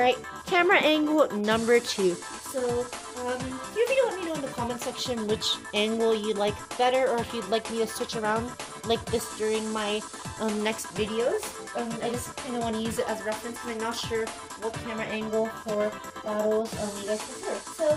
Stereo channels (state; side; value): identical; both; correlation 1.00